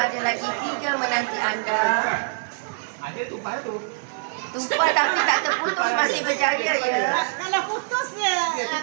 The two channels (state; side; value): silent; left; digital silence